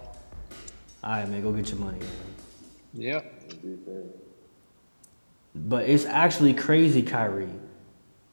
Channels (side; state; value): both; inverted; correlation -1.00